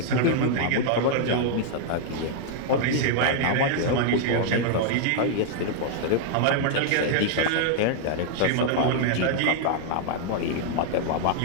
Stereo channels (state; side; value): different; both; correlation -0.01